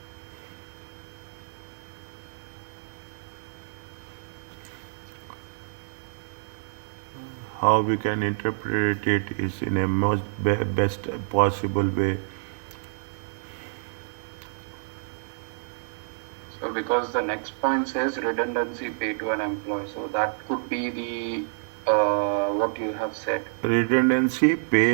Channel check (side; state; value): left; silent; 59 dB below the other